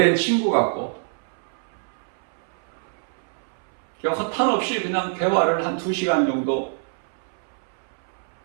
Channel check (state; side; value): silent; left; 62 dB below the other